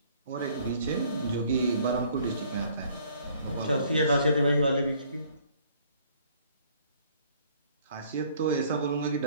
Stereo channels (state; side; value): inverted; both; correlation -0.59